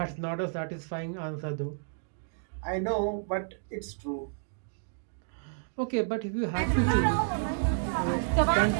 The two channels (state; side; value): silent; left; digital silence